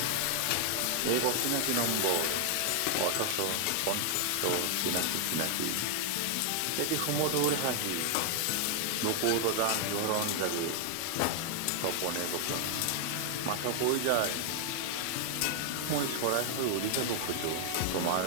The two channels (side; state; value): both; different; correlation 0.00